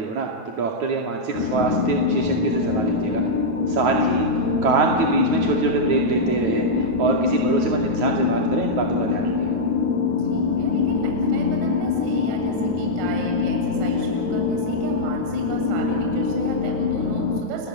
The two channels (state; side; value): late; left; 9.3 ms